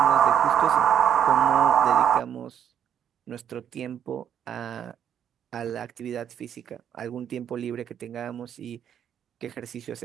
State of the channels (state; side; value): quieter; left; 9.2 dB